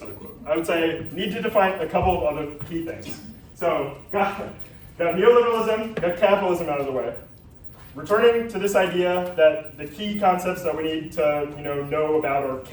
I would say need to define a couple of other key things. So got neoliberalism, got capitalism out of the way. Returning to this idea that the key concepts that we need to know about are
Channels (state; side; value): identical; both; correlation 1.00